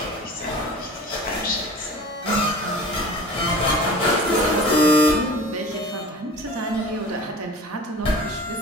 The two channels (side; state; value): both; normal; correlation 0.40